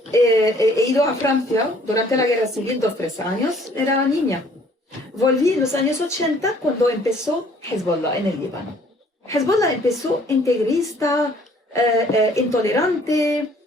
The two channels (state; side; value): normal; both; correlation 0.58